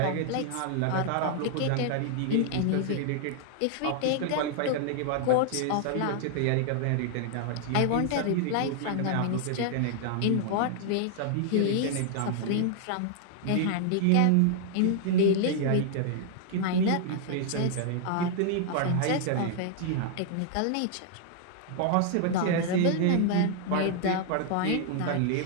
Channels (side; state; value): both; different; correlation 0.00